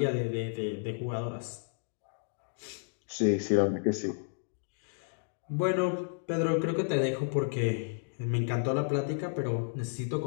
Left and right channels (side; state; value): right; silent; digital silence